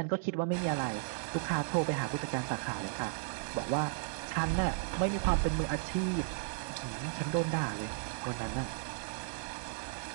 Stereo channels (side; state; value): left; silent; digital silence